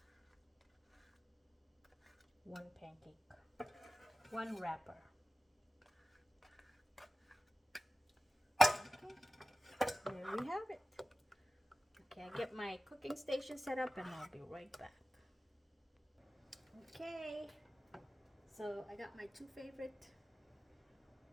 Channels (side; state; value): both; normal; correlation 0.96